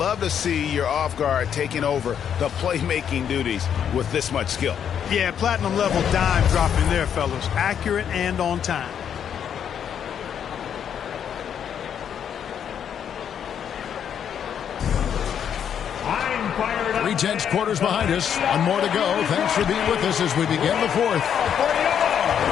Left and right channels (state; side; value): quieter; right; 8.5 dB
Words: to see your off guard taking over the playmaking duties with this much skill. Yeah, platinum level dime dropping there, fellas. Accurate and on time. Tense quarters behind us. One more to go. Thanks for being with us as we begin the fourth.